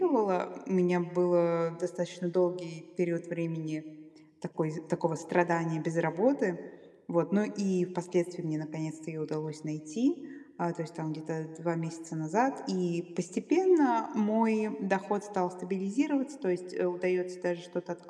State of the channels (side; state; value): both; identical; correlation 1.00